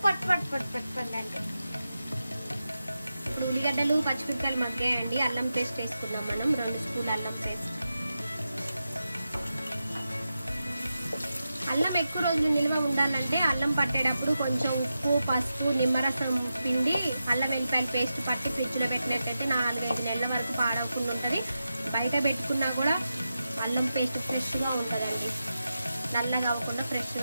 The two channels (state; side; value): inverted; both; correlation -0.91